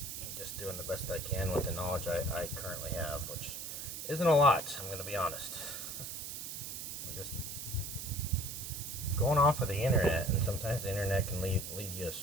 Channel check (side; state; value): right; noise; hiss, 7 dB below the sound